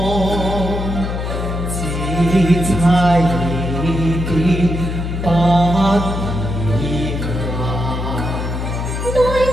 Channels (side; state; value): left; noise; hum, 3 dB below the sound